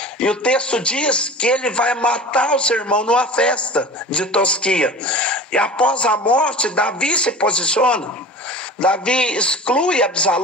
E o texto diz que ele vai matar o seu irmão numa festa de tosquia. E após a morte, Davi se posiciona. Davi exclui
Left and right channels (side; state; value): both; normal; correlation 0.37